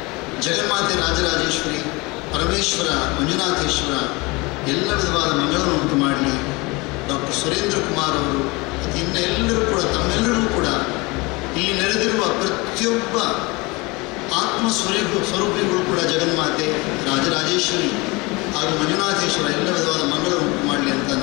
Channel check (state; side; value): quieter; right; 25.1 dB